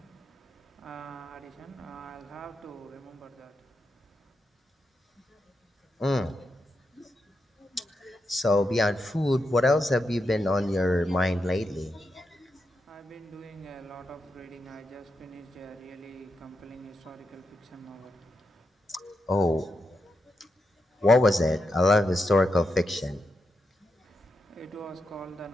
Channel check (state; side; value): normal; both; correlation 0.85